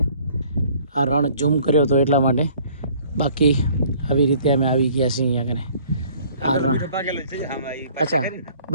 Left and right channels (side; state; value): both; inverted; correlation -0.56